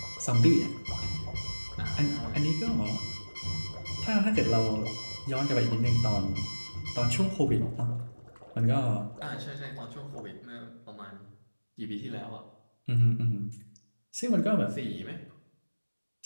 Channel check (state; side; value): inverted; both; correlation -1.00